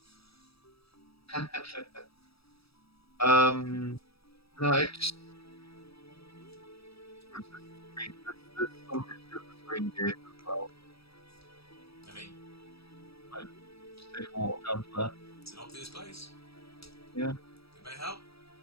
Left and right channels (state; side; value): late; right; 0.77 ms